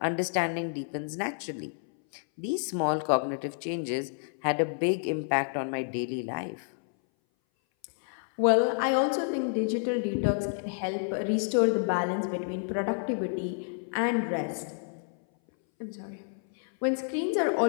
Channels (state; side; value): silent; right; 58 dB below the other